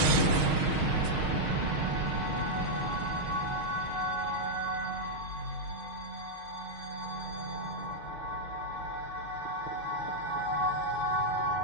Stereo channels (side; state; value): left; late; 6.4 ms